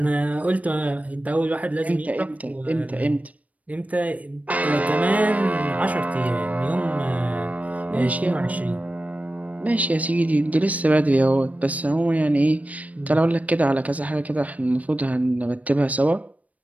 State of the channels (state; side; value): late; left; 0.070 ms